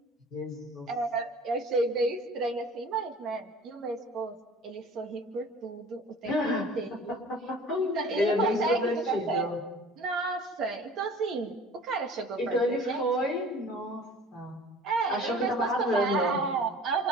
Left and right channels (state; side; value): normal; both; correlation 0.45